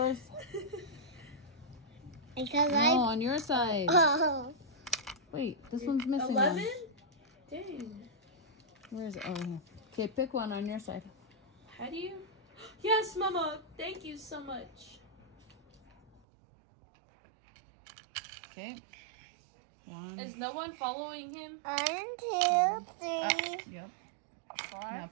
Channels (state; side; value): drops out; left; at 16.2 s